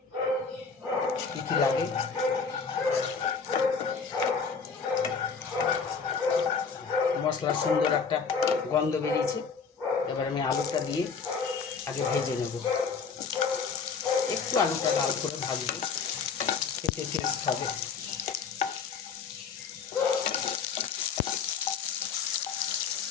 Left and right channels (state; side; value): quieter; right; 5.6 dB